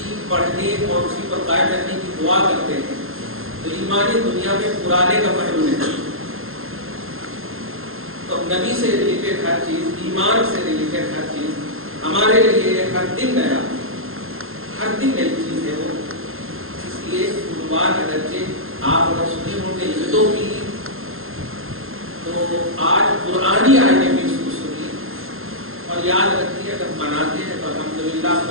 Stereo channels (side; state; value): left; late; 0.61 ms